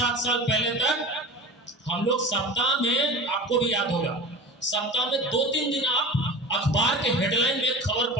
साल पहले तक हम लोग सप्ताह में, आपको भी याद होगा, सप्ताह में 2-3 दिन आप अखबार के हेडलाइन में खबर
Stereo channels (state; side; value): normal; both; correlation 0.34